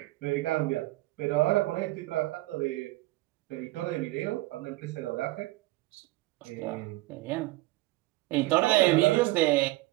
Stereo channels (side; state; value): left; quieter; 19.7 dB